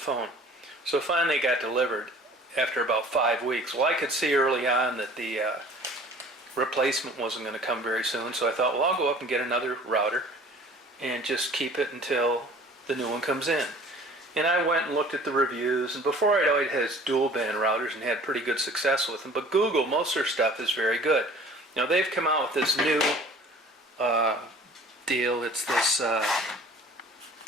So finally it got delivered after about 5 weeks. Well, I could see early on that the replacement wasn't going to come very soon, so I thought, well, I'll go up and get another router and just keep it until the new one comes in. And I went and looked at the reviews, and before I'd always had dual band routers and had pretty good success with them, but Google, most of their stuff is very good. Now they've come out with this new deal. It's this,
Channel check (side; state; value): both; normal; correlation 0.48